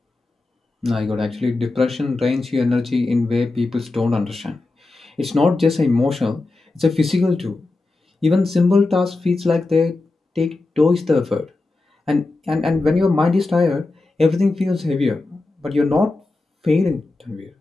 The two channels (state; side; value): quieter; right; 3.2 dB